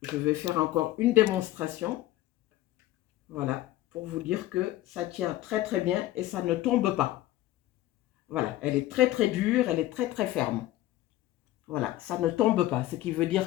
je vais faire encore une démonstration. Voilà, pour vous dire que ça tient très bien et ça ne tombe pas. Voilà, elle est très dure, elle est très ferme. Voilà, ça ne tombe pas, ce qui veut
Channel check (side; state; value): right; quieter; 15.3 dB